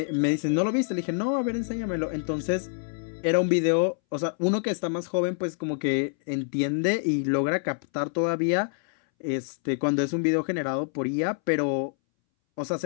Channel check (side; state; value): right; silent; 61 dB below the other